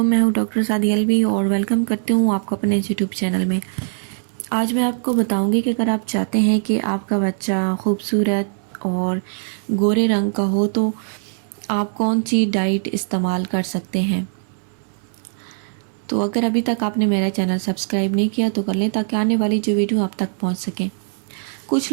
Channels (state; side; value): silent; left; 63 dB below the other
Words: मैं हूँ डॉक्टर सादी अलवी और वेलकम करती हूँ आपको अपने यूट्यूब चैनल में। आज मैं आपको बताऊँगी कि अगर आप चाहते हैं कि आपका बच्चा खूबसूरत और गोरे रंग का हो तो आप कौन सी डाइट इस्तेमाल कर सकते हैं। तो अगर अभी तक आपने मेरा चैनल सब्सक्राइब नहीं किया तो कर लें ताकि आने वाली जो वीडियो आप तक पहुँच सकें। कुछ